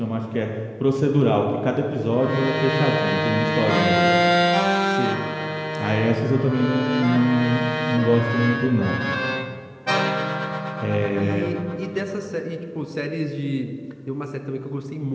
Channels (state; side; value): identical; both; correlation 1.00